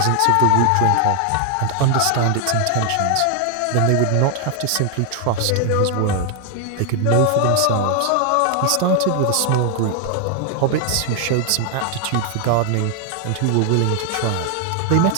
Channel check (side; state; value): both; different; correlation 0.00